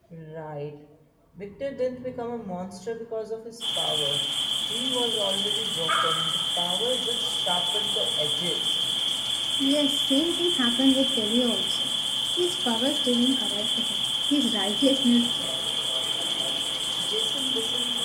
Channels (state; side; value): identical; both; correlation 1.00